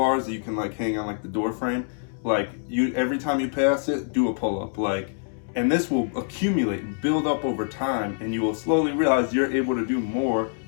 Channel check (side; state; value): right; silent; digital silence